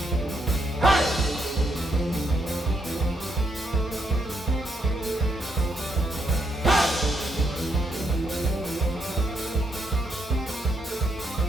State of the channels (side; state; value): both; normal; correlation 0.77